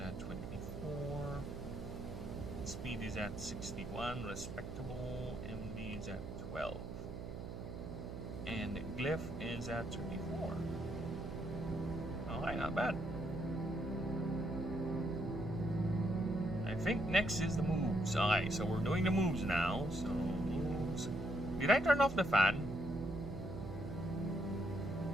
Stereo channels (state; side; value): noise; right; hum, 8 dB below the sound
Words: 24. Speed is at 61, respectable. MD is at 12. And Glyph is at 34. Alright, not bad. I think next is the moves. Alright, so we're doing the moves now. So, moves. Did I turn off the fan?